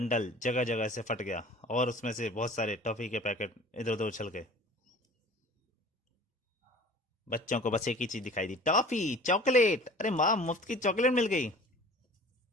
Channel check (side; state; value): both; normal; correlation 0.44